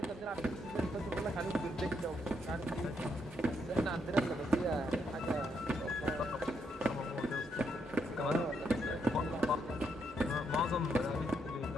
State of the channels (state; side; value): normal; both; correlation 0.76